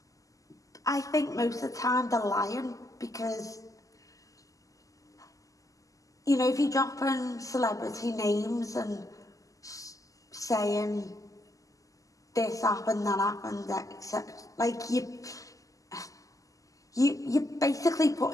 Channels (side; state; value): right; late; 0.16 ms